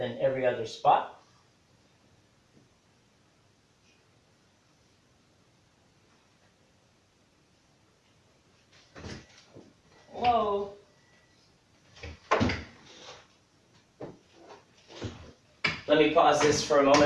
every other spot. Whoa. Let me pause this for a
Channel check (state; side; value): identical; both; correlation 1.00